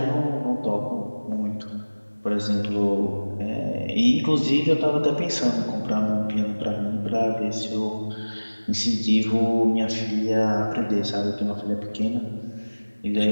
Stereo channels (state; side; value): inverted; both; correlation -1.00